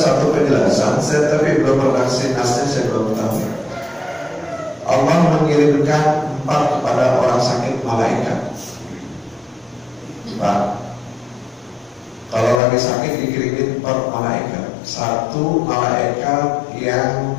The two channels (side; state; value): right; drops out; at 12.6 s